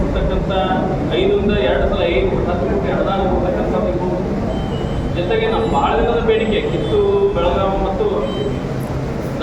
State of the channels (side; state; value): both; identical; correlation 1.00